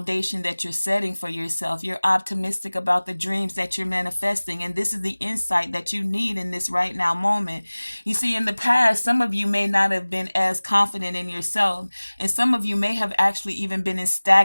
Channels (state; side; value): inverted; both; correlation -1.00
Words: that you're setting for yourself. You're optimistic about the dreams that you're manifesting. And this is the insight that you need in this right now moment. You see, in the past, some of you may not have been as confident in yourself. And some of you may have actually even been in